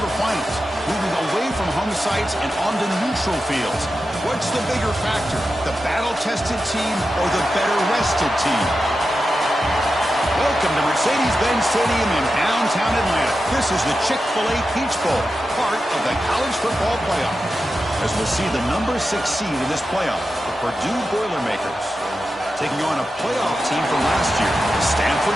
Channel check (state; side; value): normal; both; correlation 0.91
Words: moving away from home sites and onto neutral fields. What's the bigger factor, the battle-tested team or the better-rested team? Welcome to Mercedes-Benz Stadium in downtown Atlanta. This is the Chick-fil-A Peach Bowl, part of the college football playoff. As we'll see the number 6 seed in this playoff, the Purdue Boilermakers, taking on a playoff team from last year, the